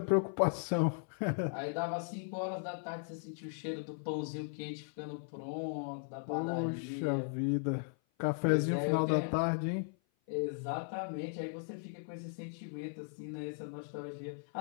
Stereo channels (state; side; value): silent; right; 53 dB below the other